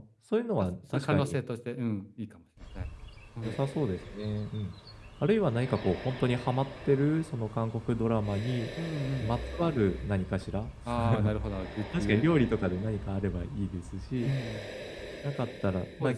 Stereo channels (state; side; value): identical; both; correlation 1.00